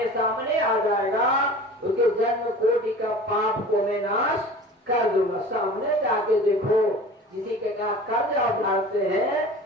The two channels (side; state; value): both; normal; correlation 0.40